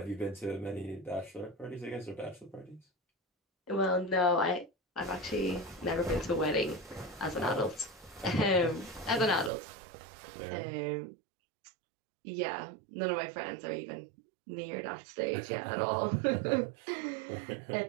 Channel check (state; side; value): drops out; left; at 9.5 s